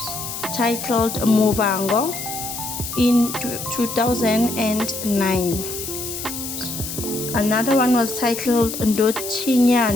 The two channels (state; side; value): noise; left; hiss, 7 dB below the sound